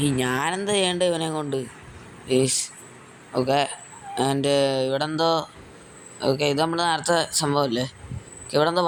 ഞാനെന്താ ചെയ്യേണ്ടത് ഇവനെ കൊണ്ട്? ഓക്കെ. ആൻഡ് ഇവിടെ എന്തോ. ഓക്കെ, ഇത് നമ്മൾ നേരത്തെ സംഭവമല്ലേ? ഇവിടെ എന്തോ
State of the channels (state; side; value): identical; both; correlation 1.00